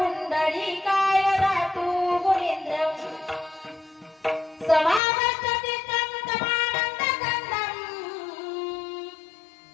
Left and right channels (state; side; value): drops out; right; at 5.0 s